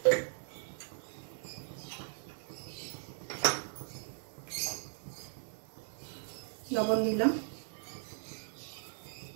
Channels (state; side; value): silent; left; digital silence